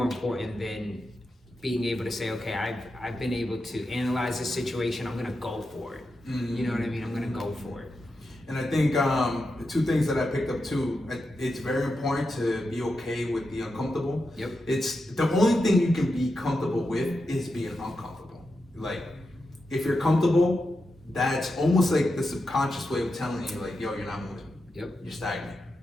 important than being able to say, okay, I've been able to analyze this situation. I'm gonna go for it. You know what I mean? I'm gonna go for it. And I think the two things that I picked up too, it's very important to be okay with the uncomfortable. Yep. It's the only thing you can be comfortable with is being uncomfortable. Like, if you're comfortable, that's almost like the subconscious way of telling you, like, yo, you're not moving. Yep. You're stagnant.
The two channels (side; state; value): both; normal; correlation 0.88